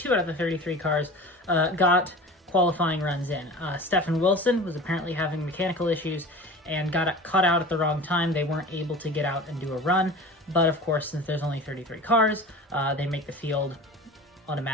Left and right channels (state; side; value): normal; both; correlation 0.37